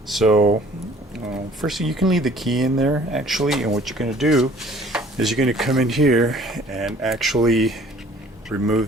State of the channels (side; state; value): both; normal; correlation 0.54